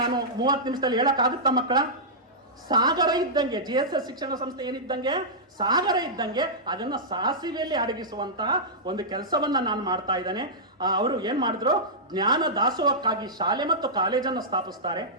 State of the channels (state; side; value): normal; both; correlation -0.13